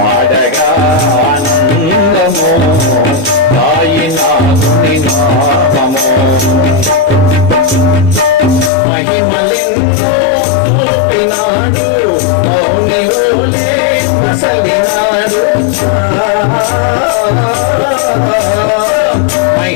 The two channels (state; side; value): drops out; right; at 8.7 s